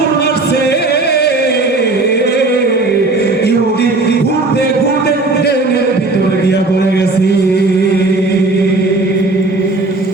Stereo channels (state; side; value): quieter; left; 3.2 dB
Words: মারছে, ইহুদি ঘুরতে ঘুরতে ট্রেনের ভিতরে গিয়া পড়ে গেছে।